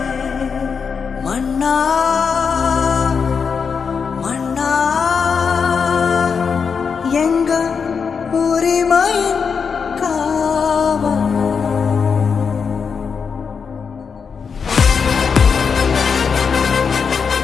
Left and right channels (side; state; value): right; quieter; 5.9 dB